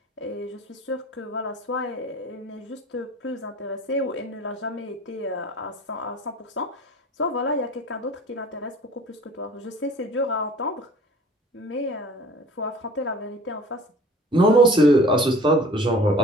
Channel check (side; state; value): both; normal; correlation 0.47